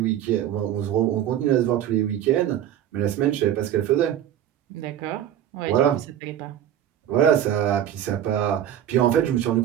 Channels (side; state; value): left; quieter; 10.7 dB